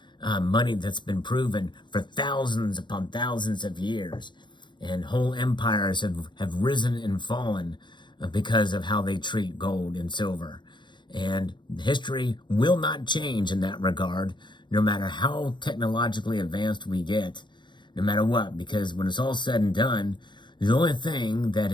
money that's been proven for thousands upon thousands of years. And whole empires have risen and fallen because of how they treat gold and silver. And history will not change in that regard, no matter how technologically advanced we get, no matter what, because when it's all said and done, the only thing that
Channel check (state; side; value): late; right; 0.22 ms